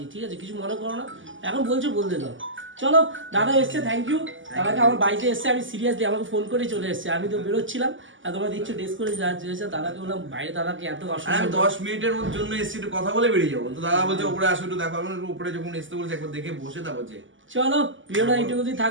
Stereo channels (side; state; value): left; late; 0.56 ms